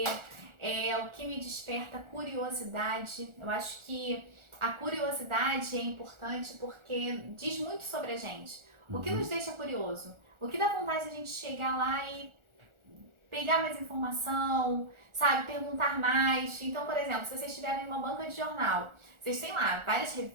o que me desperta curiosidade. Eu acho que a curiosidade é importante porque diz muito sobre a gente. O que nos deixa curioso? O que dá vontade de a gente chegar lá e pegar mais informação, sabe, perguntar mais. Então, por exemplo, se vocês estiverem em uma banca de jornal, vocês têm lá várias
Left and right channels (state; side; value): late; left; 1.4 ms